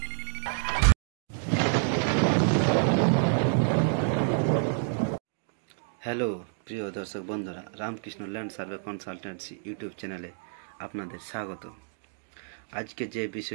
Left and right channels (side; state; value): left; silent; digital silence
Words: প্রিয় দর্শক বন্ধুরা, Ramakrishna land survey consultancy YouTube চ্যানেলে আপনাদের স্বাগত। আজকে যে